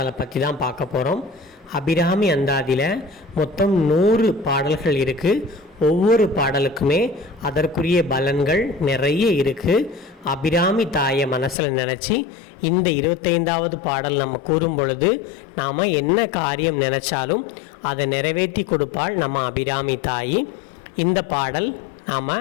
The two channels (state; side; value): drops out; right; at 11.6 s